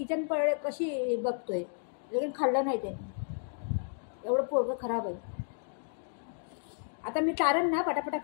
कशी बघतोय, लेकिन खाल्लं नाही त्याने. एवढं पोरगं खराब आहे. आता मी चारण ना, पटापटा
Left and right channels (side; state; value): right; silent; digital silence